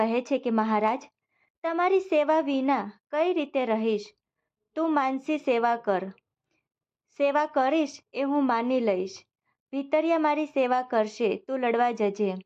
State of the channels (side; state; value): both; identical; correlation 1.00